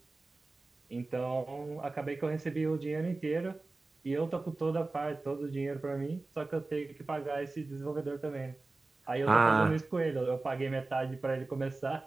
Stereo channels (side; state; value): left; quieter; 3.4 dB